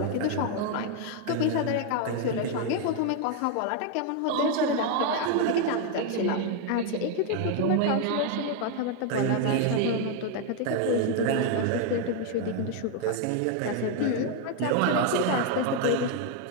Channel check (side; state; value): both; different; correlation 0.01